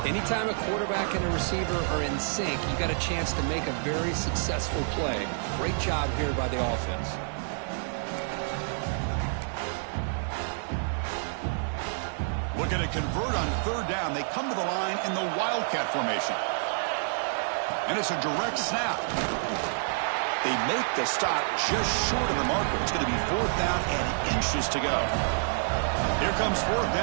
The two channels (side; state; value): left; silent; digital silence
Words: Anytime a quarterback and a receiver are in sync, you got a chance to make a very successful play. Great job here by the offense. Looking to convert on 3rd down. They come to the line in the Wildcat formation. And it's a direct snap. They make the stop just short of the marker. It's going to be 4th down and inches to go. Here comes 4th